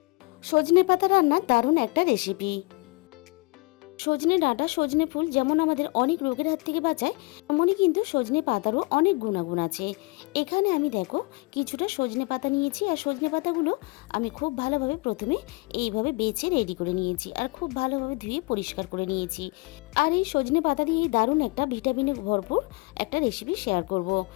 সজনে পাতা রান্নার দারুণ একটা রেসিপি। সজনে ডাঁটা, সজনে ফুল যেমন আমাদের অনেক রোগের হাত থেকে বাঁচায়, তেমনই কিন্তু সজনে পাতারও অনেক গুণাগুণ আছে। এখানে আমি দেখো কিছুটা সজনে পাতা নিয়েছি, আর সজনে পাতাগুলো আমি খুব ভালোভাবে প্রথমে এইভাবে বেছে রেডি করে নিয়েছি, আর খুব ভালোভাবে ধুয়ে পরিষ্কার করে নিয়েছি। আর এই সজনে পাতা দিয়েই দারুণ একটা ভিটামিনে ভরপুর একটা রেসিপি শেয়ার করব।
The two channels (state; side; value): quieter; right; 27.0 dB